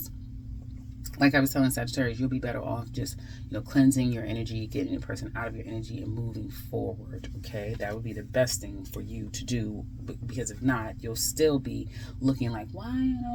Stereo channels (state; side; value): identical; both; correlation 1.00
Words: Like I was telling Sagittarius, you'll be better off just, cleansing your energy, getting the person out of your energy and moving forward, okay? That would be the best thing for you to do, because if not, you'll still be looking like, why I